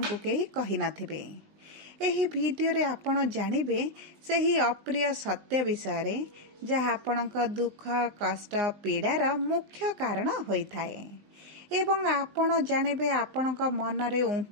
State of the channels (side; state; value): left; late; 20 ms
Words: को केही कहि नथिबे। एही वीडियो रे आपण जानिबे सेही अप्रिय सत्य विषय रे जहाँ आपणक दुख कष्ट पीड़ार मुख्य कारण होइथाए एवं आपण जानिबे आपणक मनरे